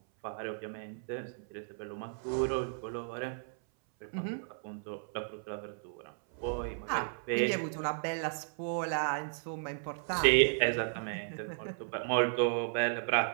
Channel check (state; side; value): silent; left; 55 dB below the other